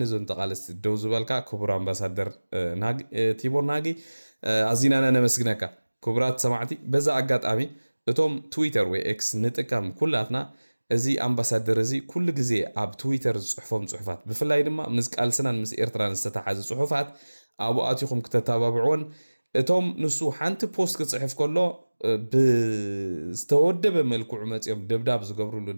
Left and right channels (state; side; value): inverted; both; correlation -1.00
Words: ዞን ተቃለስቲ ደው ዝበልካ ክቡር ኣምባሳደር ቲቦር ናጊ ኣዚናና ነመስግነካ ክቡራት ሰማዕቲ በዛ ኣጋጣሚ እቶም ትዊተር ወይ ኤክስ ንጥቀም ኩላትና እዚ ኣምባሳደር እዚ ኩሉ ግዜ ኣብ ትዊተር ዝጽሕፎም ጽሑፋት ብፍላይ ድማ ምስ ቃልስናን ምስ ኤርትራን ዝተተሓዘ ጽሑፋት ኣብኡ ኣትኹም ክተተባብዑን እቶም ንሱ ሓንቲ ፖስት ክጽሕፍ ከሎ ብዝተወደበ መልክዑ መጽኦም ደብዳብ ዝገብሩሉ